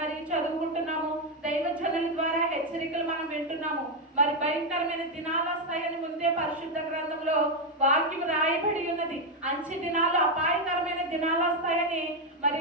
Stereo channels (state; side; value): normal; both; correlation 0.05